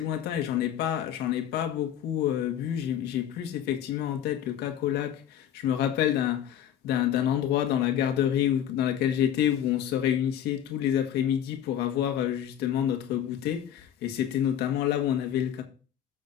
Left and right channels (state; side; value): quieter; right; 10.3 dB